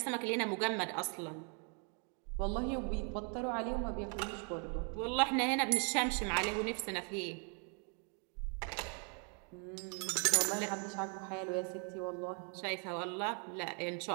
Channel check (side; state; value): left; quieter; 39.7 dB